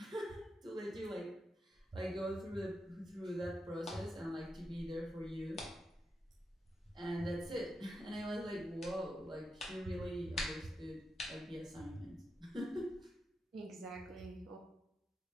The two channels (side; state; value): both; normal; correlation 0.86